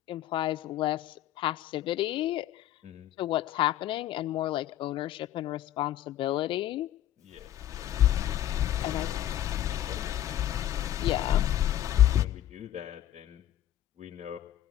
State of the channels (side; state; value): right; quieter; 12.3 dB